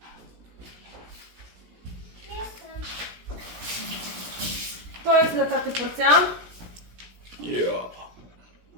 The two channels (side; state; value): left; late; 17 ms